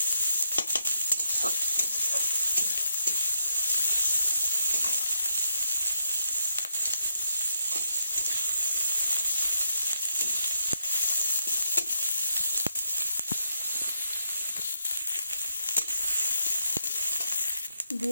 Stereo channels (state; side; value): inverted; both; correlation -0.78